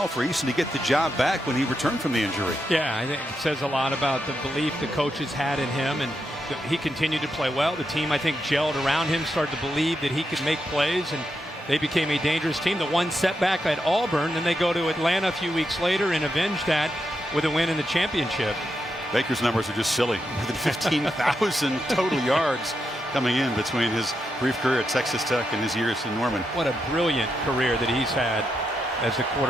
for Eason to get the job back when he returned from the injury. Yeah, I think it says a lot about the belief the coaches had in him, and he continued to play well. The team, I think, gelled around him, started to believe that he could make plays, and they became a dangerous team. The one setback at Auburn, then they go to Atlanta a few weeks later and avenge that with a win in the championship. Baker's numbers are just silly. More than 15,000 total yards coming in between his brief career at Texas Tech and his years in Norman. What a brilliant career that he's had as a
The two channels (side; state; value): both; normal; correlation 0.84